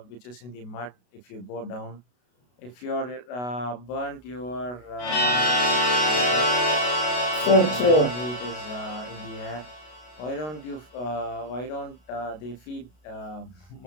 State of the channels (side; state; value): right; late; 32 ms